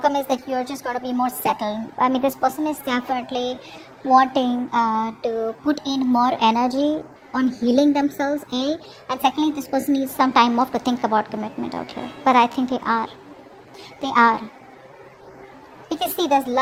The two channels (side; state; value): both; identical; correlation 1.00